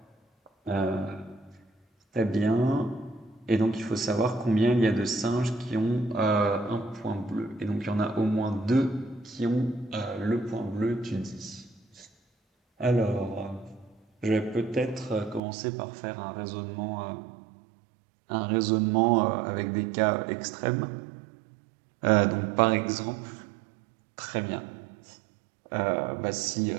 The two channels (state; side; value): drops out; left; at 15.4 s